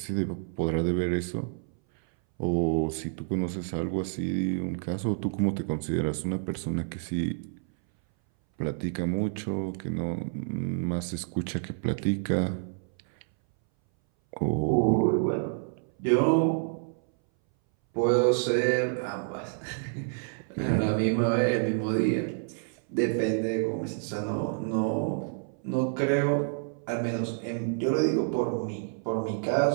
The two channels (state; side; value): silent; left; 59 dB below the other